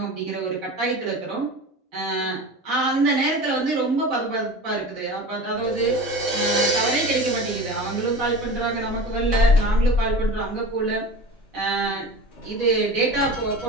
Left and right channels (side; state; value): both; normal; correlation 0.33